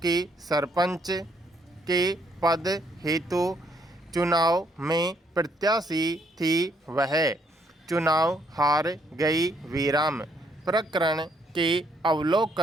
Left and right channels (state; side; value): normal; both; correlation 0.70